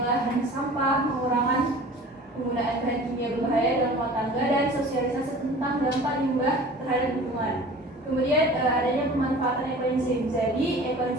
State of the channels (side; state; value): both; normal; correlation 0.42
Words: sampah, pengurangan penggunaan bahan kimia berbahaya dalam rumah tangga, dan sosialisasi tentang dampak limbah terhadap lingkungan. Kemudian adanya pemanfaatan ekoenzim. Jadi